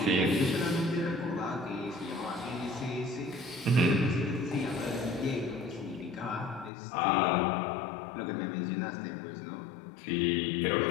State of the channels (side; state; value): right; drops out; at 6.7 s